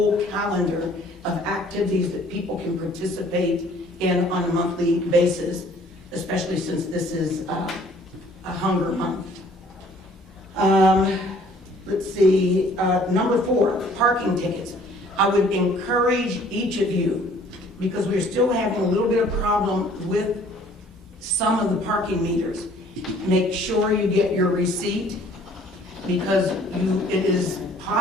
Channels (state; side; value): normal; both; correlation 0.56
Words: calendar of activities that people can participate in on a monthly basis, especially since this is a hunger month. Let's see, number 4, parking tickets. I would encourage each of you, because we're still having a little bit of problem with some of the parking meters. Make sure you get your receipt, because it is